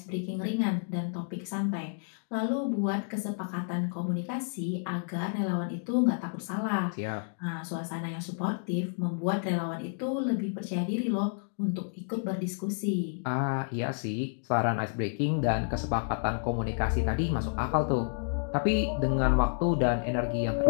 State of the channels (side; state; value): right; silent; digital silence